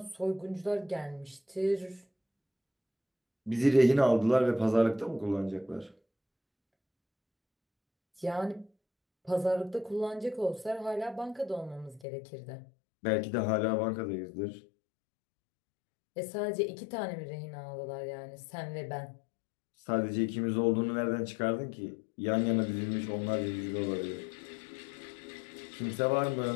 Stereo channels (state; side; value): drops out; right; at 12.1 s